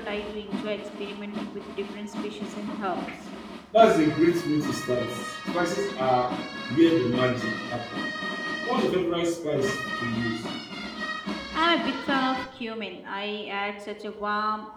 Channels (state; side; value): identical; both; correlation 1.00